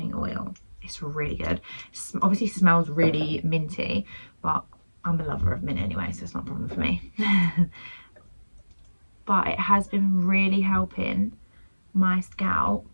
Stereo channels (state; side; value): inverted; both; correlation -1.00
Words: Oil. It's really good. Obviously smells really minty, but I'm a lover of mint anyway, so it's not a problem for me. But it has been really helping my